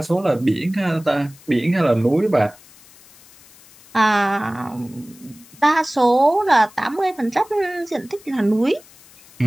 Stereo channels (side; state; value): left; noise; hiss, 25 dB below the sound